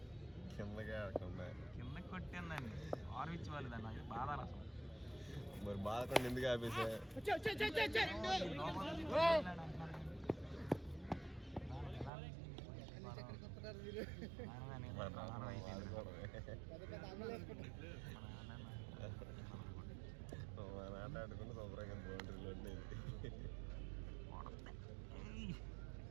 కింద కొట్టిందండి. ఆర్విచ్ వాళ్ళు దాన్ని బాధ అసలు. మరి బాధకుండా ఎందుకు ఆపేసా? ఆటాడుకుంటే శుభ్రంగా బౌండరీలో ఉండేది.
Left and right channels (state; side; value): drops out; left; at 12.1 s